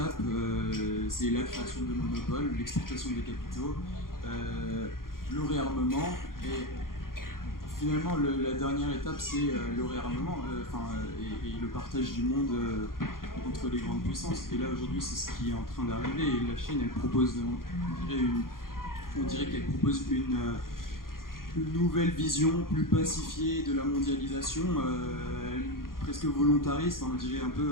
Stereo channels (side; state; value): right; late; 0.91 ms